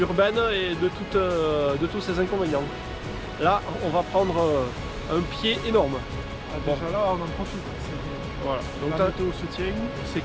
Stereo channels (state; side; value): identical; both; correlation 1.00